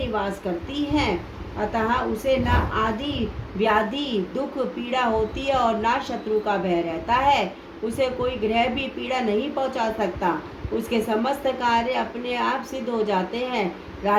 करती है। अतः उसे न आदि व्याधि दुख पीड़ा होती है और न शत्रु का भय रहता है। उसे कोई ग्रह भी पीड़ा नहीं पहुंचा सकता। उसके समस्त कार्य अपने आप सिद्ध हो जाते हैं।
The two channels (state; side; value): identical; both; correlation 1.00